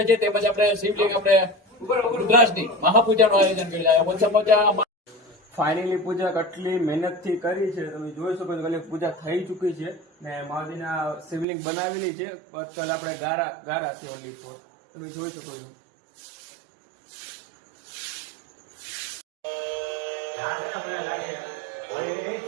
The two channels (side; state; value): left; drops out; at 11.5 s